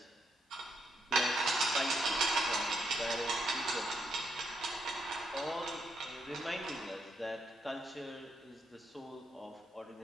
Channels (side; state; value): both; normal; correlation 0.78